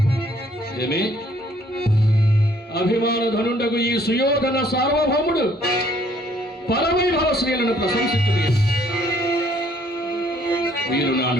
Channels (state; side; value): normal; both; correlation 0.63